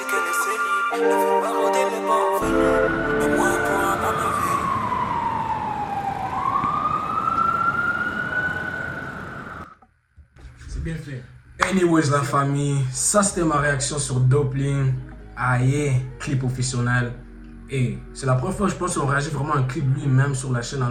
qu'elle est célib. Elle veut pas rôder les bancs. Mais moi, elle pourra pas me faire. C'est bien fait. Anyways, la famille, ça c'était ma réaction sur Dopelin. Aïe, clip officiel. Et c'est la première fois, je pense, qu'on réagit vraiment à un clip lui-même sur la chaîne.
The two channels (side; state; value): both; identical; correlation 1.00